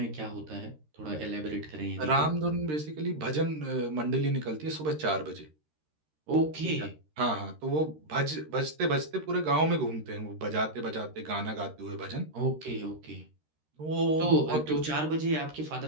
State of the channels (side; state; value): left; late; 13 ms